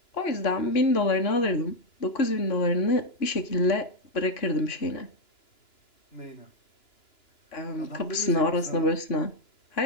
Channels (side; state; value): right; late; 2.9 ms